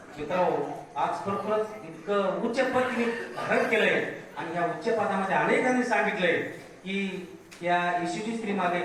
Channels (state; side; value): identical; both; correlation 1.00